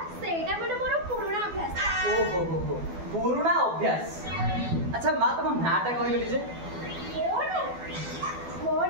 माने मोर पुराना अभ्यास ओहो हो पुराना अभ्यास अच्छा माँ तुम नाटा कहले जे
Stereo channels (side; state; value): left; late; 12 ms